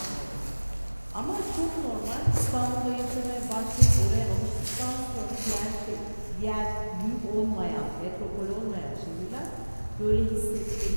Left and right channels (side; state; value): both; inverted; correlation -1.00